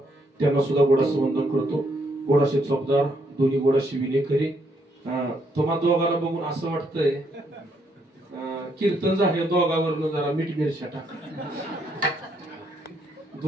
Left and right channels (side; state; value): both; normal; correlation 0.73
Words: त्यांना सुद्धा गोडाचं वंदन करतो. गोडाशे चोपदार, दोन्ही गोडाशे विलेखरी. तुम्हा दोघांना बघून असं वाटतंय कीर्तन झाले दोघांवरनं जरा मीठ मिरच्या टाका.